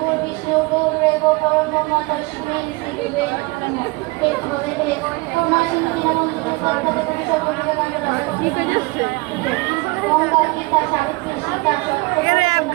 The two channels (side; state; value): left; quieter; 24.5 dB